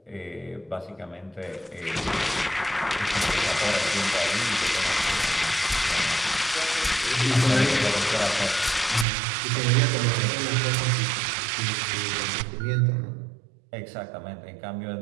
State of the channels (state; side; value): drops out; left; at 9.1 s